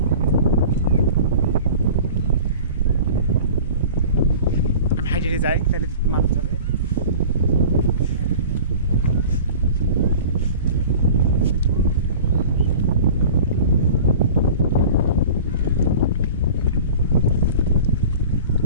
আমি হাইটে যাই, তাহলে মানুষ যাবে।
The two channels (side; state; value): both; inverted; correlation -0.40